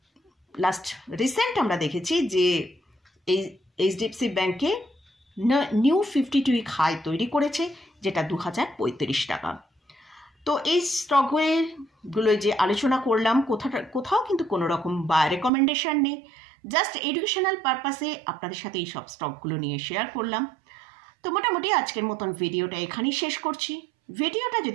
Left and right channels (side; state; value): left; drops out; at 15.5 s